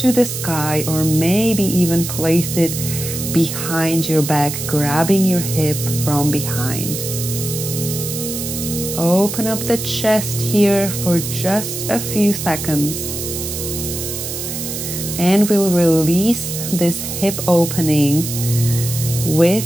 the sky, or maybe even place it behind your back, grabbing your hip from behind. Open up the chest here for just a few seconds. And we'll release this hip opening with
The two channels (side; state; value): right; noise; hiss, 6 dB below the sound